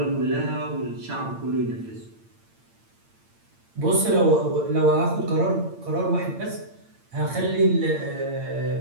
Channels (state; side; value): late; left; 8.8 ms